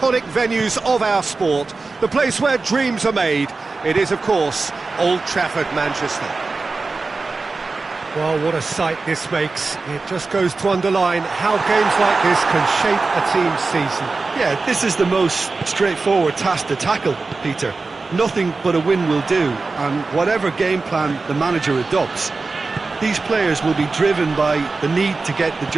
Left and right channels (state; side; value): quieter; left; 3.9 dB